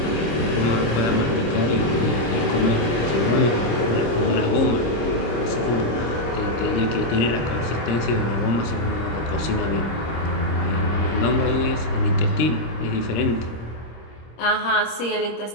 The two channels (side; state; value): right; late; 26 ms